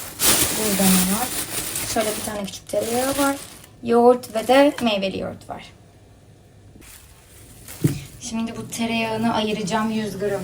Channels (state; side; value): identical; both; correlation 1.00